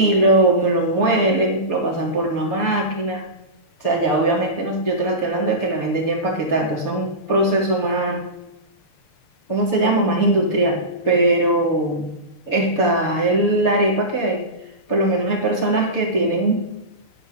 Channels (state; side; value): late; right; 6.7 ms